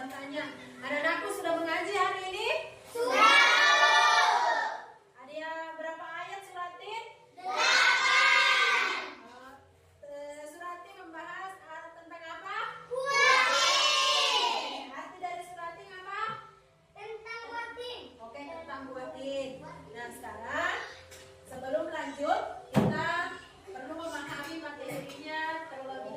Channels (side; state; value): both; identical; correlation 1.00